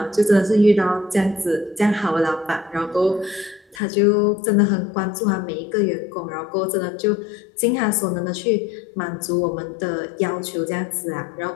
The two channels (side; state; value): right; drops out; at 3.8 s